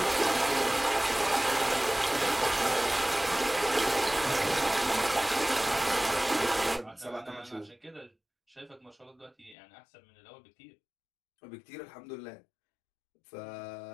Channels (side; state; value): right; drops out; at 9.6 s